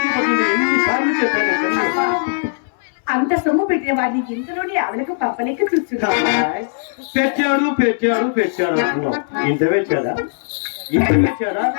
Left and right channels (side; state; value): right; silent; 67 dB below the other